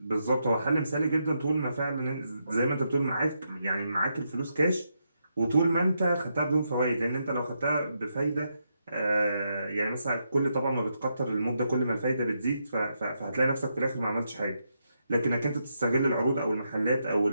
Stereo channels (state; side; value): inverted; both; correlation -0.82